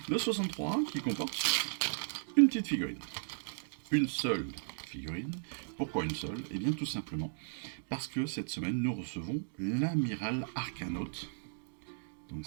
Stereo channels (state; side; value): silent; left; digital silence